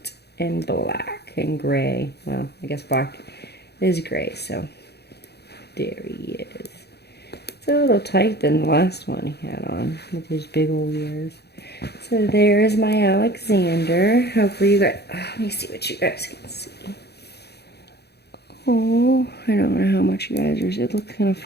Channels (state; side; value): late; right; 0.48 ms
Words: and black, and gray. Well, I guess black is gray, so there he is. It's a little tight than the last one he had on, with his big old ears. So there's my Alexander. Hopefully you guys, let me see what you guys can see. Oh, I don't know how much you guys are, it looks kind of